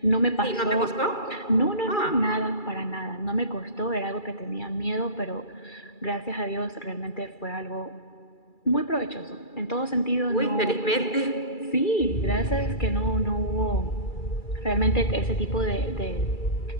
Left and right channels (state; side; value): late; right; 2.3 ms